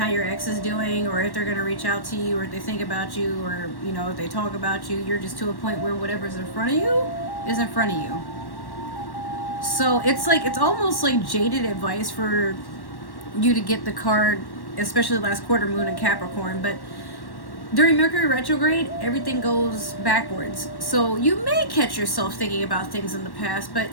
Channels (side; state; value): right; late; 1.1 ms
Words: your ex is doing or if they're going to reach out to you or if they think about you or, you know, if they talk about you. You're just to a point where whatever's in front of you is in front of you. So it's like, it's almost like jaded advice for you to get the card, especially last quarter moon in Capricorn. But during Mercury retrograde, everything goes backwards. So you may catch yourself thinking about things in the past, but